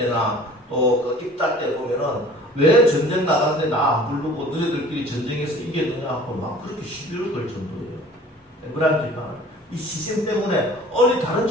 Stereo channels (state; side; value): normal; both; correlation 0.48